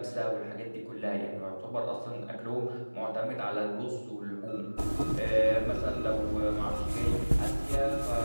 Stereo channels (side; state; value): both; inverted; correlation -1.00